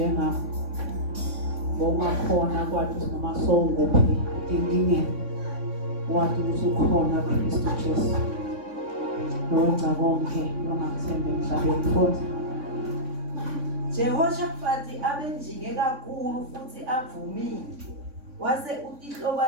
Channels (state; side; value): late; left; 3.6 ms